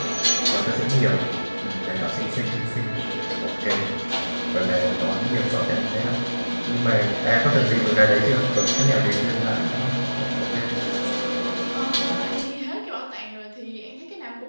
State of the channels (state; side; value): inverted; both; correlation -1.00